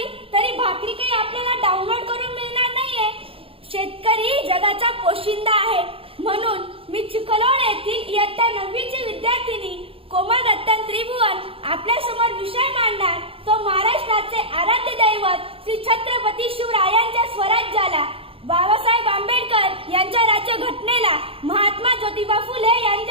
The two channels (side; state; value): left; late; 0.27 ms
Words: तरी भाकरी काही आपल्याला डाउनलोड करून मिळणार नाहीये. शेतकरी जगाचा पोशिंदा आहे. म्हणून मी चिखलोड येथील इयत्ता 9वीची विद्यार्थिनी कोमल रतन त्रिभुवन आपल्या समोर विषय मांडणार तो महाराष्ट्राचे आराध्य दैवत श्री छत्रपती शिवरायांच्या स्वराज्याला, बाबासाहेब आंबेडकर यांच्या राज्यघटनेला, महात्मा ज्योतिबा फुले